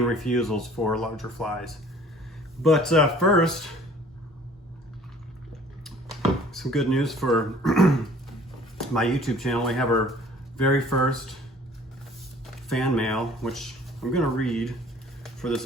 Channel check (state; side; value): normal; both; correlation 0.52